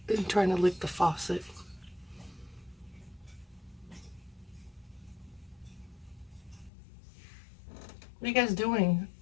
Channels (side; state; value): right; drops out; at 6.7 s